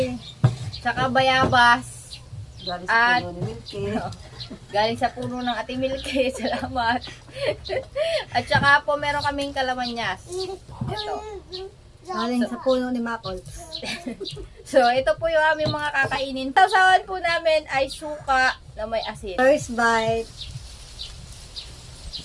Tsaka bayabas. Galing At- puno ni Milky. Galing sa puno ng Ate Milky. Salamat. At saka po meron kaming kalamanyas. Ito. Galing sa puno ni Makol. So ito po yung aming mga kakainin. Sausawan po namin ay suka na may asin. First bite.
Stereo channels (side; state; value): both; identical; correlation 1.00